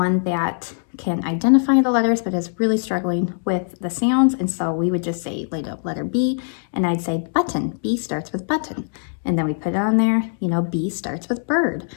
that can identify the letters but is really struggling with the sounds. And so we would just say letter B, and I'd say button. B starts with button. And then we put it on there, you know, B starts with bird.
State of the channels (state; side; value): silent; right; digital silence